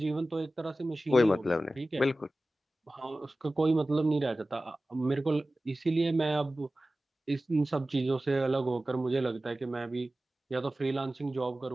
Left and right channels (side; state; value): both; normal; correlation 0.96